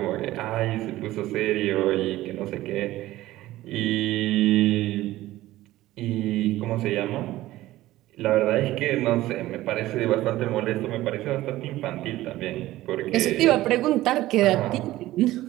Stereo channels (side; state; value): left; quieter; 16.1 dB